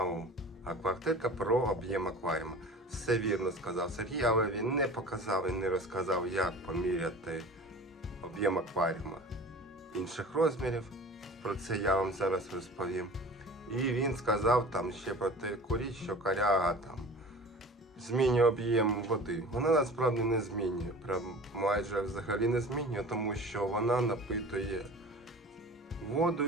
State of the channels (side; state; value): both; normal; correlation 0.40